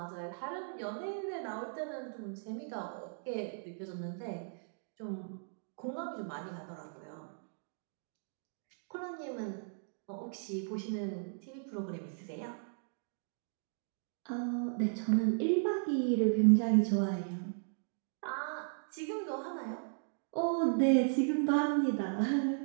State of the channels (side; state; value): left; silent; digital silence